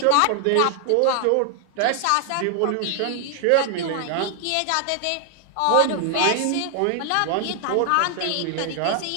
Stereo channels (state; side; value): different; both; correlation 0.00